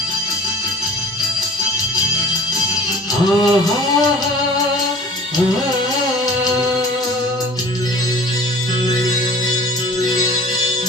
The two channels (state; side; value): normal; both; correlation 0.46